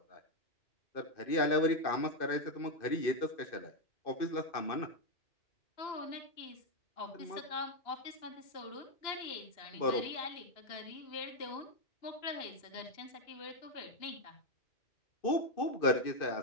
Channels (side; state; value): right; late; 2.6 ms